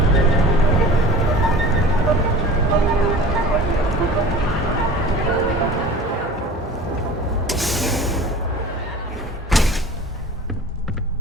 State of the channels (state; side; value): normal; both; correlation 0.41